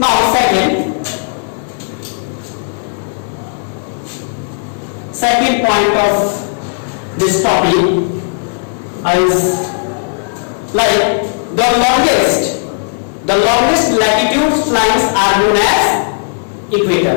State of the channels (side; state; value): right; silent; digital silence